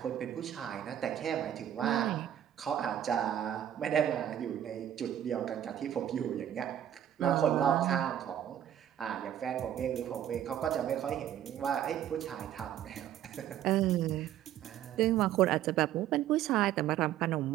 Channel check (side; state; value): left; quieter; 10.9 dB